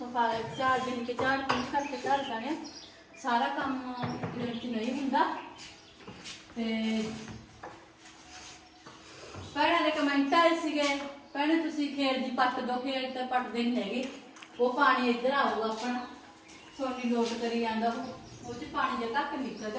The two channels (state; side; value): identical; both; correlation 1.00